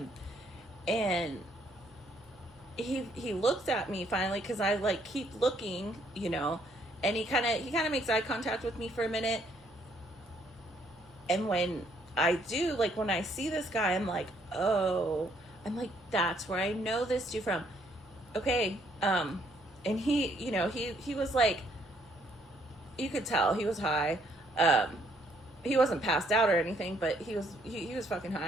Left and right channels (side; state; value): both; normal; correlation 0.68